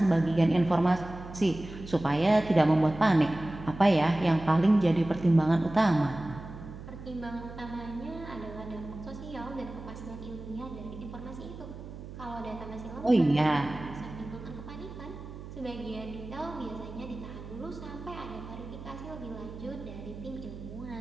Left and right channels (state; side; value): noise; right; hum, 12 dB below the sound